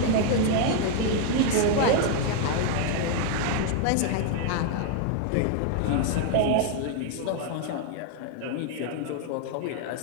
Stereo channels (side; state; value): both; different; correlation 0.01